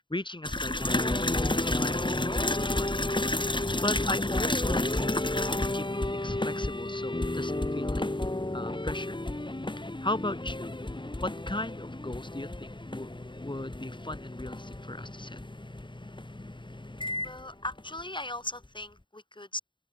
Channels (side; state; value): right; late; 0.23 ms